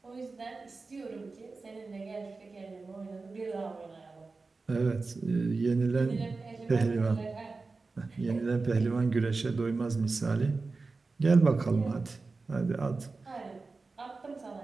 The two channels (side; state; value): left; quieter; 3.9 dB